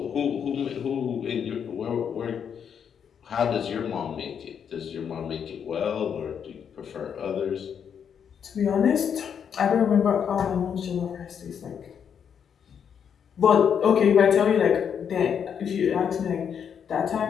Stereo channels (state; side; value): quieter; right; 7.7 dB